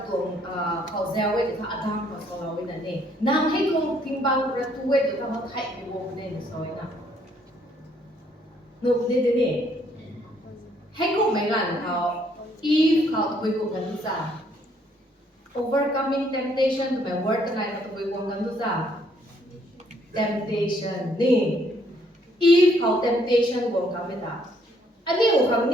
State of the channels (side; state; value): both; normal; correlation 0.67